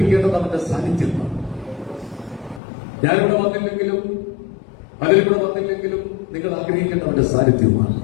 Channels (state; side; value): drops out; right; at 2.6 s